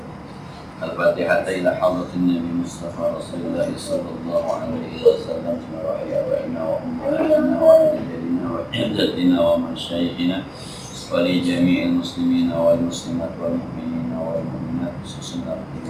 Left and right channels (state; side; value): identical; both; correlation 1.00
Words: Al-Fatihah ila hadratin Nabi Mustafa Rasulullah sallallahu alaihi wasallam wa ala abaina wa ummahatina wa ajdadina wa jaddatina wa masyayikhina wa li jami'il muslimina wal muslimat wal mu'minina wal mu'minat khususnya li